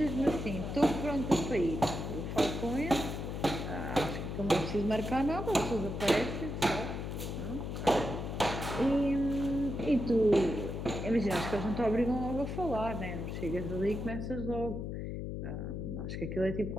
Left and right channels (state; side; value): noise; left; hum, 5 dB below the sound